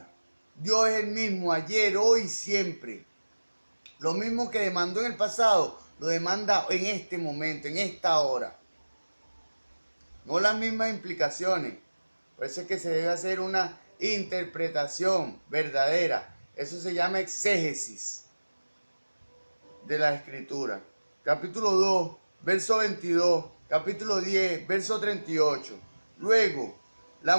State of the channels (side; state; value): both; inverted; correlation -1.00